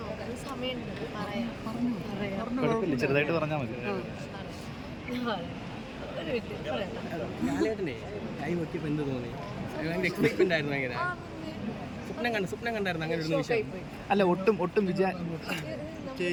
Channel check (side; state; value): both; identical; correlation 1.00